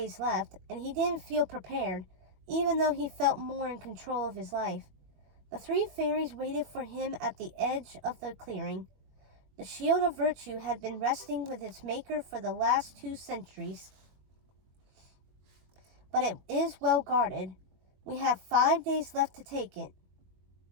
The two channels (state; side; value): late; left; 21 ms